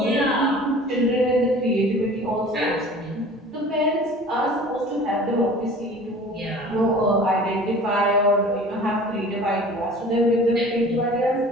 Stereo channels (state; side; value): normal; both; correlation 0.44